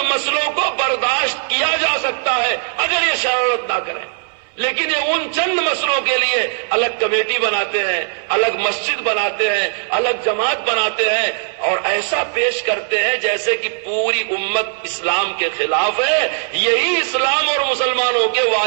مسئلوں کو برداشت کیا جا سکتا ہے اگر یہ شرارت نہ کریں، لیکن یہ ان چند مسئلوں کے لیے الگ کمیٹی بناتے ہیں، الگ مسجد بناتے ہیں، الگ جماعت بناتے ہیں، اور ایسا پیش کرتے ہیں جیسے کہ پوری امت اسلام کے خلاف ہے. یہی اسلام اور مسلمانوں کے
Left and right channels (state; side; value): silent; left; 61 dB below the other